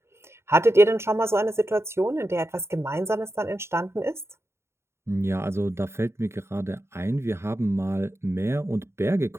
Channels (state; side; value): late; left; 0.13 ms